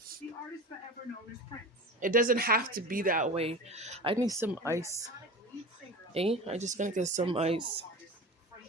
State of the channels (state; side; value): normal; both; correlation 0.32